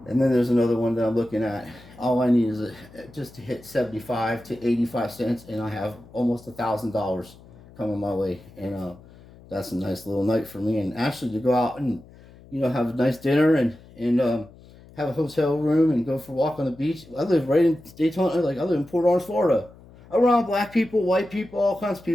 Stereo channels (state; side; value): noise; left; hum, 23 dB below the sound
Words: and then there's another one that I'm looking at. All I need is just to hit 75 to 85 cents, and I have almost $1,000 coming my way. And that's a nice little night for me. And actually to go out and have a nice dinner and have a hotel room and go for a walk on the beach. I live right in Daytona. I live in Port Orange, Florida, around black people, white people, all kinds of